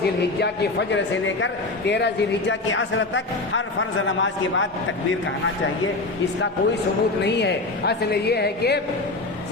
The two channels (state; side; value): quieter; right; 3.1 dB